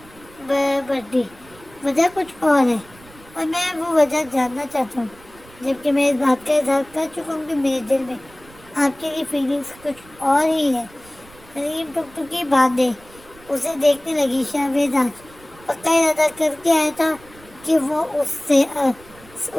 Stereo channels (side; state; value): right; noise; rumble, 23 dB below the sound